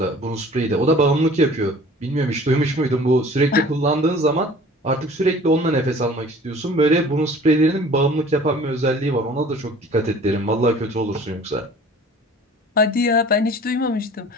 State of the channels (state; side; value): normal; both; correlation 0.47